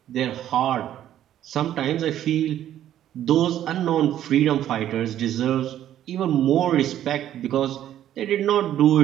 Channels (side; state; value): left; quieter; 11.6 dB